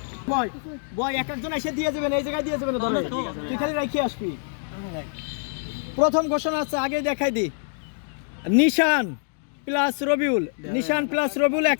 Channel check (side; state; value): right; silent; 62 dB below the other